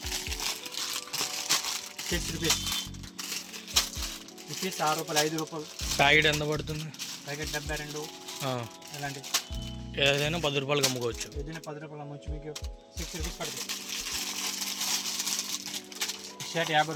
₹6 రూపీస్, ₹6, ₹5. ప్యాకెట్ ఎంత పడుతుంది? ప్యాకెట్ 72. ఇలాంటి ఏదైనా ₹10 అమ్ముకోవచ్చు. ఏదైనా ₹10 అమ్మవచ్చు. మీకు ₹6 పడుతుంది. షర్ట్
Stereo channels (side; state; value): both; identical; correlation 1.00